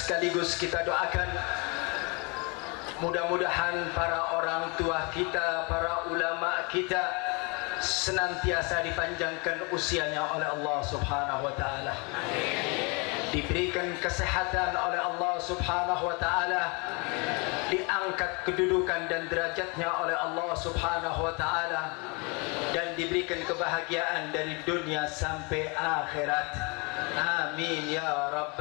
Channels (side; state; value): right; quieter; 30.7 dB